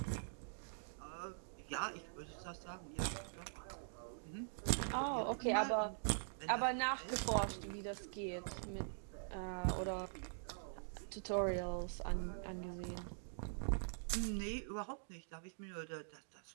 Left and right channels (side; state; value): left; silent; digital silence